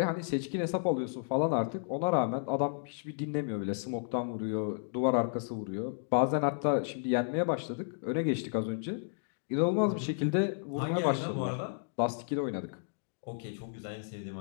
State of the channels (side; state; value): right; silent; digital silence